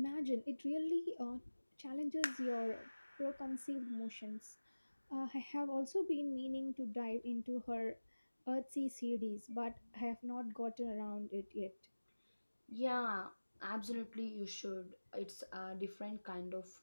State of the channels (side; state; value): both; inverted; correlation -1.00